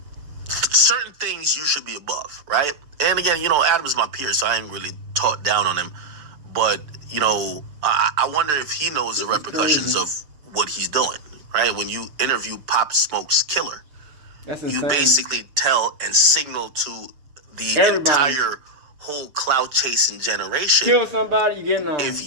Certain things you should be above, right? And again, you know, Adam's my peer, so I ain't really talked down on him. But, you know, I wonder if he knows the repercussions of what he's doing, right? When you interview Pop Smoke's killer, That's insane. you basically tell and signal to the Everybody. entire whole clout chasing generation. Kill somebody, you getting on.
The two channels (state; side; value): late; left; 6.8 ms